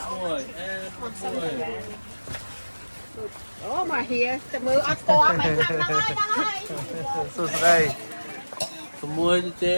Ủa mà hìa, chả mưa ăn co mấy thằng đang ơi. Sụt đây. Tụi mua chứ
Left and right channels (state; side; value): inverted; both; correlation -1.00